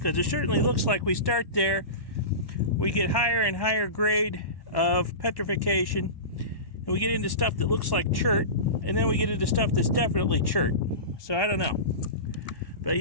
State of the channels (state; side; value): late; right; 1.1 ms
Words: it certainly looks like we start there, we get higher and higher grade of petrification, and we get into stuff that looks like chert, and then we get into stuff that's definitely chert. So I don't know. But